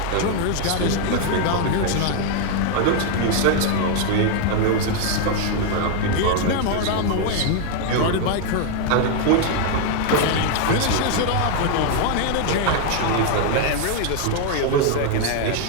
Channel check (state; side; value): different; both; correlation 0.01